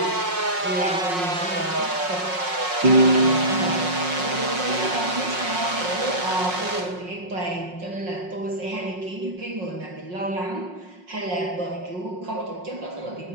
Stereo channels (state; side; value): late; left; 5.5 ms